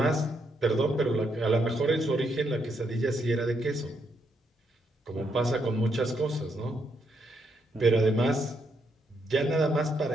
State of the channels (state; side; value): normal; both; correlation 0.77